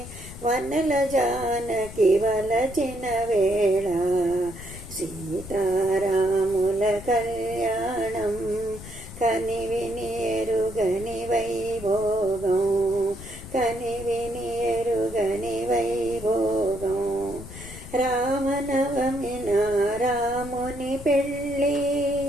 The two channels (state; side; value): noise; left; rumble, 14 dB below the sound